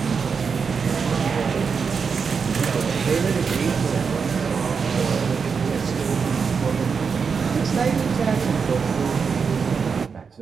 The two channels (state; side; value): quieter; left; 5.7 dB